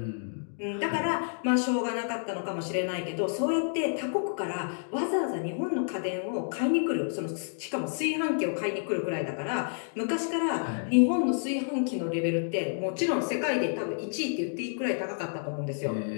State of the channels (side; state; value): right; silent; digital silence